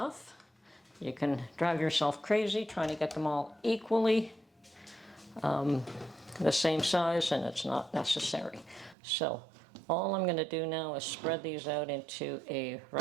You can drive yourself crazy trying to get them all equally. the same size, and it's not necessary. So all I'm going to do now is spread these out into a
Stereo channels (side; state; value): left; drops out; at 9.0 s